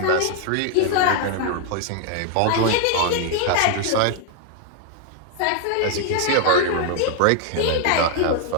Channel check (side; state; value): both; different; correlation 0.00